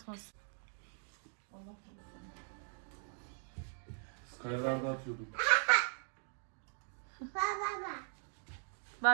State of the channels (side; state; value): left; silent; 51 dB below the other